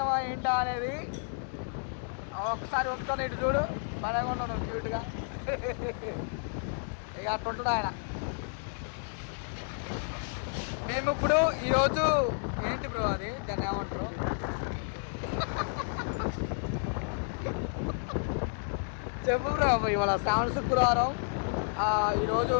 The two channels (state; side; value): silent; right; 57 dB below the other